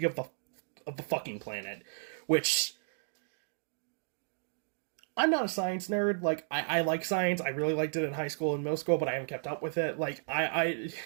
of the fucking planet, which I'm not a science nerd. Like, I like science. I really liked it in high school and middle school, but I haven't kept up with it. Like, I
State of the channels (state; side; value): silent; left; digital silence